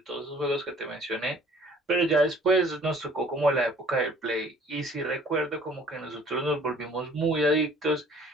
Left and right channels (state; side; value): normal; both; correlation 0.53